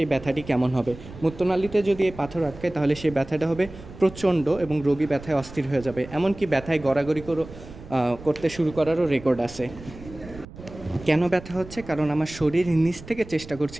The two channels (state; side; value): noise; right; rumble, 16 dB below the sound